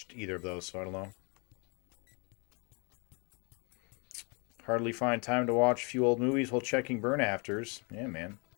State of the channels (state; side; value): quieter; right; 33.1 dB